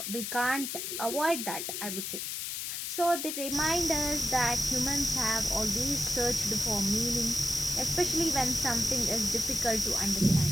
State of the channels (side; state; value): left; noise; hiss, 4 dB below the sound